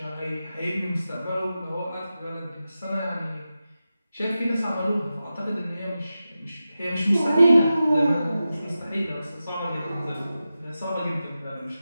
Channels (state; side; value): inverted; both; correlation -0.93